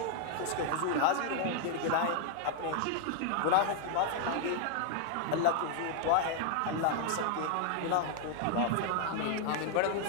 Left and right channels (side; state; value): both; different; correlation 0.00